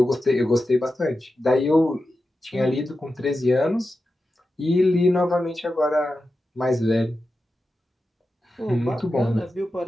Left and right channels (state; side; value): normal; both; correlation 0.91